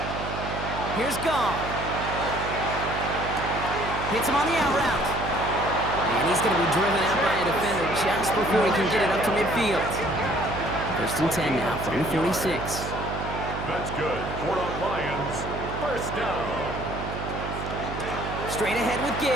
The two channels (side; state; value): right; noise; hum, 6 dB below the sound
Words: Here's Goff. Hits him on the out route. And he's going to be driven out by a defender just before he can get it up to midfield. 1st and 10 now from the 46. That's good for the Lions. 1st down. Straight ahead with